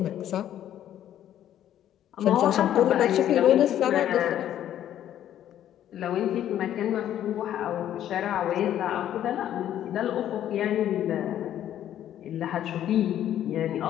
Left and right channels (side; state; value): right; quieter; 11.3 dB